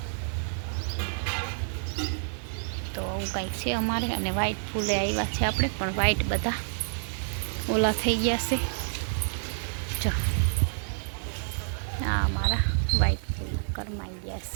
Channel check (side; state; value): left; silent; digital silence